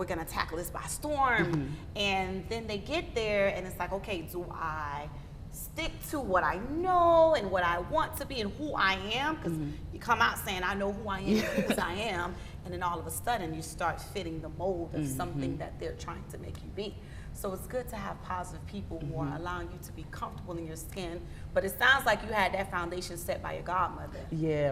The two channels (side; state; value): both; identical; correlation 1.00